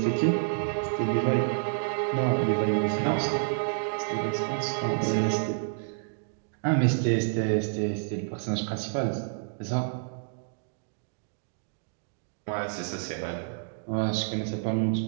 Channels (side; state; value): left; silent; digital silence